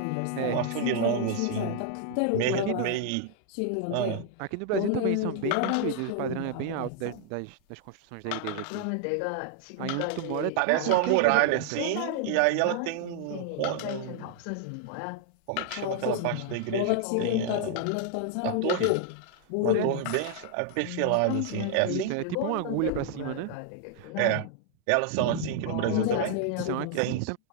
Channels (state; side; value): different; both; correlation 0.00